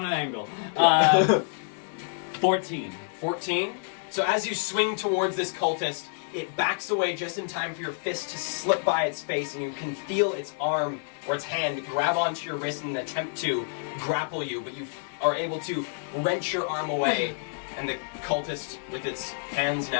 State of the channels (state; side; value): silent; right; digital silence